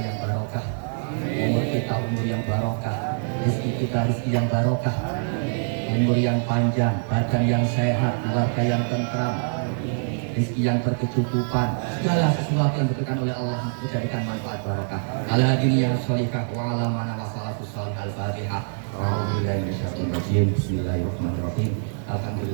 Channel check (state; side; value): silent; left; 62 dB below the other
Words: barokah, umur kita umur yang barokah, rezeki kita rezeki yang barokah, umur yang panjang, badan yang sehat, keluarga yang tentram, rezeki yang berkecukupan, segala sesuatu yang diberikan oleh Allah dijadikan manfaat barokah. Ala dunia sholihah wa ala mana wasalatu salih al-fatihah. A'udzubillahi minasyaitonir rajim. Bismillahirrahmanirrahim.